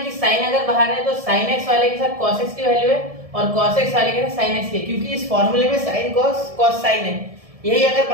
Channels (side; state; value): left; late; 1.7 ms